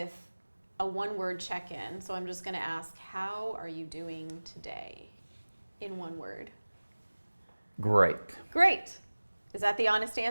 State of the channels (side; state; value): both; inverted; correlation -1.00